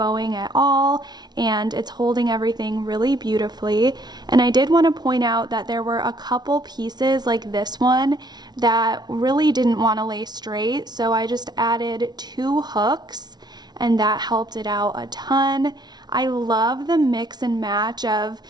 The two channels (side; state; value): left; late; 0.20 ms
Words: at all and it's holding everything really beautifully. And I did want to point out that there were a couple pieces like this one that really didn't want to lay straight, so I just added 2 hooks and that helped it out a ton. I love the mix and match of